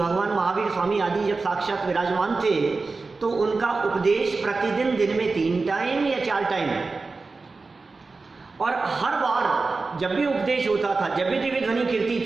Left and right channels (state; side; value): quieter; left; 3.9 dB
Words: महावीर स्वामी आदि जब साक्षात विराजमान थे तो उनका उपदेश प्रतिदिन दिन में 3 टाइम या 4 टाइम, और हर बार जब भी उपदेश होता था, जब भी दिव्य ध्वनि कीर्ति